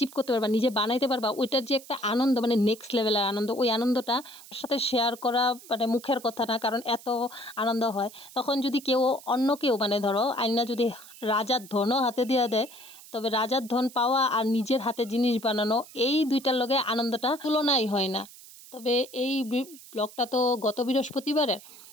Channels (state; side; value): noise; right; hiss, 19 dB below the sound